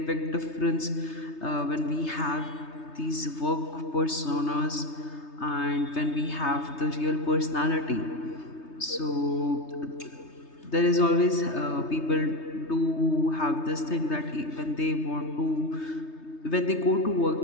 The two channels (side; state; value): right; late; 3.3 ms